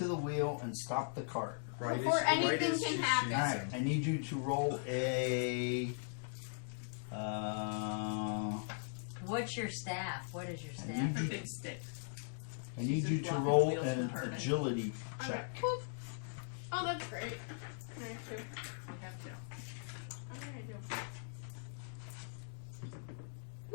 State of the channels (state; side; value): silent; right; digital silence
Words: the wheel and stop the cart. Right Before as- anything right as can she happen. shoots Alright, him. I need you to roll a. What's your staff? What is your I staff? need Her you, big stick. I need She's you just to blocking roll the wheels an from hurting. agility I'm check. gonna, whoop. Oh, that's great. I'm gonna do. We have to. I'm gonna do.